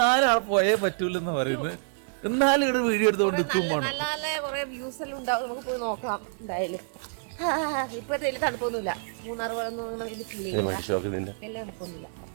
ആളെ പോയേ പറ്റൂലെന്ന് പറയുന്നത്. എന്നാലും ഇവിടെ വീഡിയോ എടുത്തോണ്ട് നിൽക്കും. നല്ല നല്ല കുറെ വ്യൂസ് എല്ലാം ഉണ്ടാവും, നമുക്ക് പോയി നോക്കാം എന്തായാലും. ഇപ്പോഴത്തെ വലിയ തണുപ്പൊന്നുമില്ല. മൂന്നാർ വെള്ളം എല്ലാം തണുപ്പൊന്നുമില്ല.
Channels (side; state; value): left; silent; digital silence